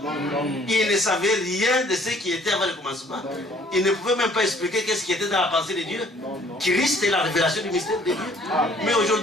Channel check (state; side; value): normal; both; correlation 0.58